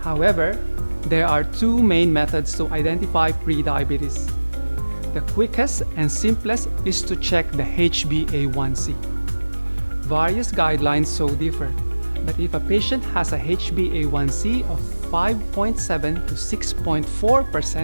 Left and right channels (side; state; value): both; inverted; correlation -1.00